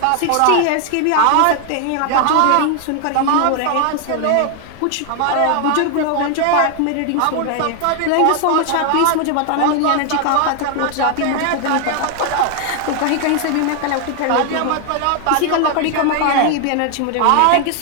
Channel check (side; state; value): both; different; correlation 0.00